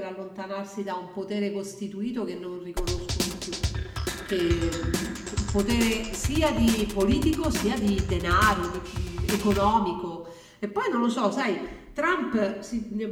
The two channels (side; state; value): both; identical; correlation 1.00